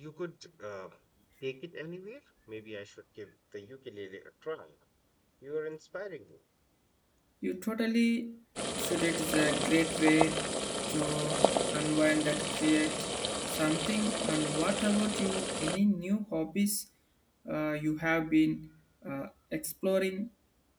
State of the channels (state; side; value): identical; both; correlation 1.00